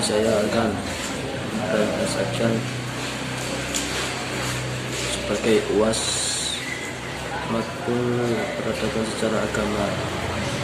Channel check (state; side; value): identical; both; correlation 1.00